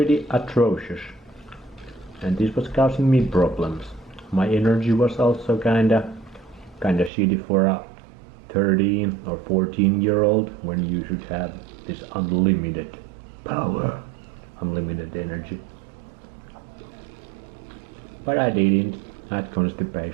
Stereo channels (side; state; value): left; drops out; at 7.1 s